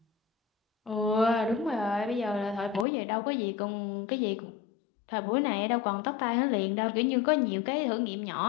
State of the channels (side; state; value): right; drops out; at 2.9 s